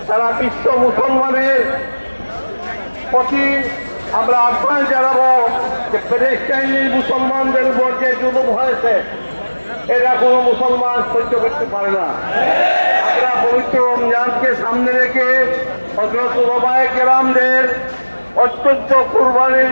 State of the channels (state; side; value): inverted; both; correlation -1.00